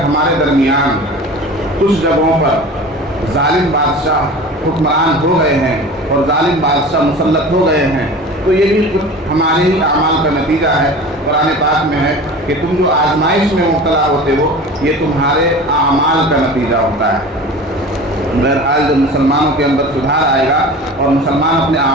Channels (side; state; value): both; normal; correlation 0.37